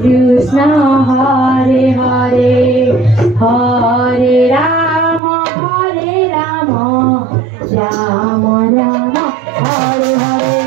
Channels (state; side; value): drops out; left; at 5.2 s